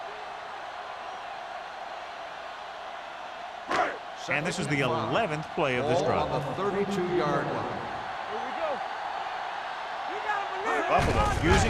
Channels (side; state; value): both; identical; correlation 1.00